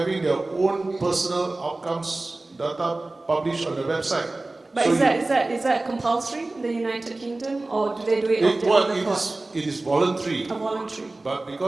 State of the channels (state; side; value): quieter; left; 3.0 dB